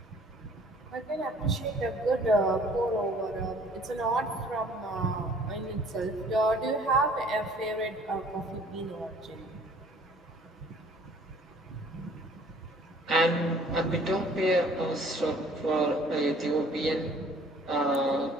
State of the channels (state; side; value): normal; both; correlation 0.55